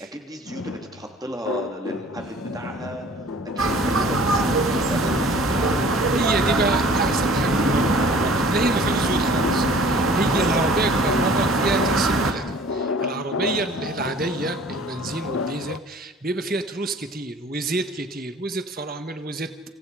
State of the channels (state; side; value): normal; both; correlation 0.49